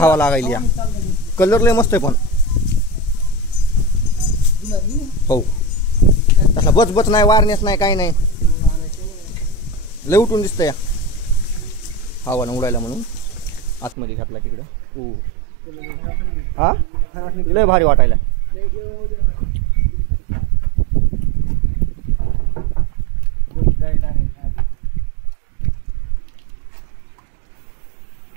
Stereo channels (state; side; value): drops out; left; at 14.0 s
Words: लागायली या. कलर लय मस्त आहे पण. हो तसा बच बच नाही, वारनेस नाही, काही नाही, लय उठून दिसतंय. हवा न उडायला म्हणून आतमध्ये घातला तिकडं. हो हा लय भारी वाटायला.